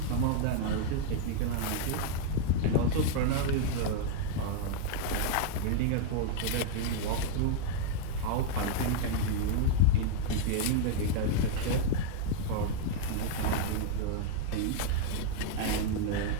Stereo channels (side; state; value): both; different; correlation -0.01